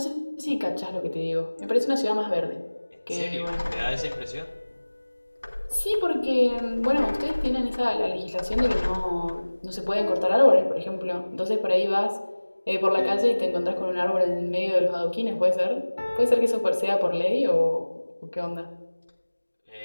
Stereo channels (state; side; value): inverted; both; correlation -1.00